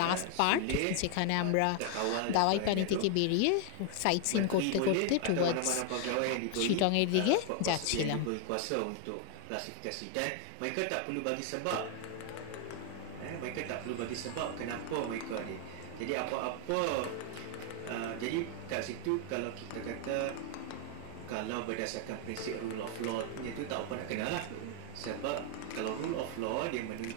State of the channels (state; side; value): different; both; correlation 0.00